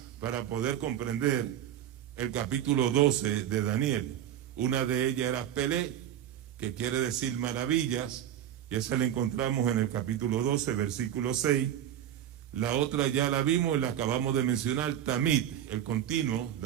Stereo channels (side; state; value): left; quieter; 10.8 dB